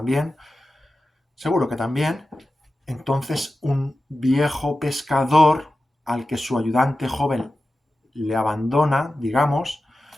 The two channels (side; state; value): both; normal; correlation 0.93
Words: seguro que también. Entonces, un viejo pescador al que su ayudante joven le abandona, digamos,